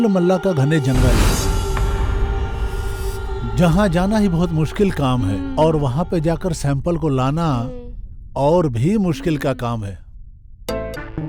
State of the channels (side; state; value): both; identical; correlation 1.00